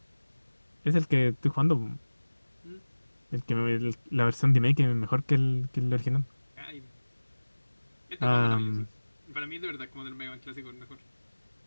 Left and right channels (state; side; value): inverted; both; correlation -1.00